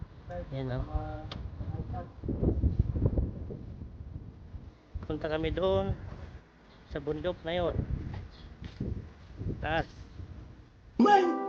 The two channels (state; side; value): identical; both; correlation 1.00